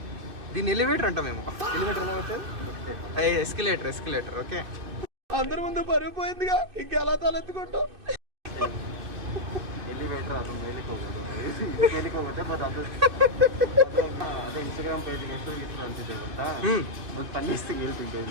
దీన్ని ఎలివేటర్ అంటాం మేము. ఎలివేటర్ ఎలా అవుతుంది? ఎస్కలేటర్. ఓకే, అందరి ముందు పరుగు పోయిందిగా, ఇంకెలా తలెత్తుకుంటాం. ಎಲಿವೇಟರ್ ಅದು ಮೇಲಿಗೆ ಹೋಗುತ್ತೆ ಬಟ್ ಅದು ಅದೇ ಇನ್ಸ್ಟಾಗ್ರಾಮ್ ಪೇಜ್ಗೆ ಎಷ್ಟು ಅಂತಿದೆ ಗೊತ್ತಾ? ಒಂದು ಪನ್ನಿಸ್ತಿಗೆ ಹೇಳ್ತಿದ್ದೆ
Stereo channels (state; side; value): late; left; 2.6 ms